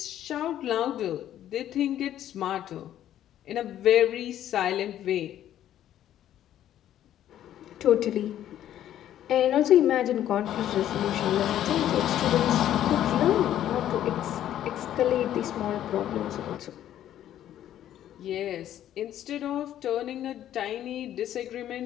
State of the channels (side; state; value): right; quieter; 11.6 dB